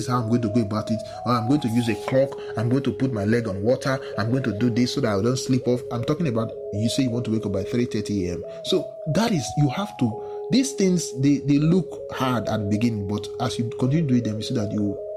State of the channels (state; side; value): identical; both; correlation 1.00